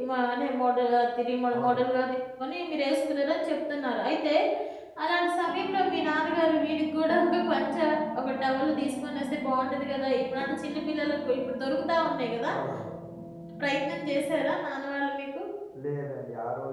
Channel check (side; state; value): both; identical; correlation 1.00